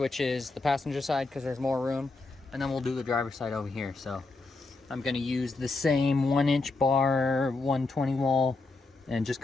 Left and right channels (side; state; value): right; quieter; 3.5 dB